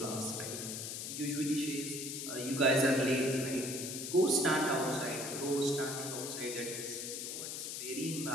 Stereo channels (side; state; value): left; noise; hiss, 5 dB below the sound